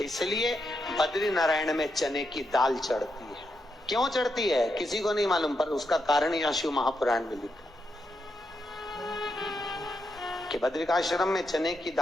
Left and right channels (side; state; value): both; normal; correlation 0.83